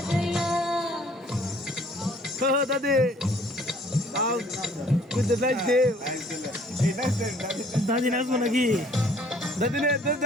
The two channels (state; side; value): normal; both; correlation 0.58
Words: দাদি দাদি নাচবো নাকি দাদি